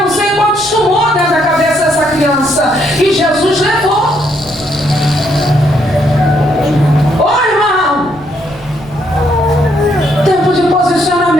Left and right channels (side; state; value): right; noise; rumble, 22 dB below the sound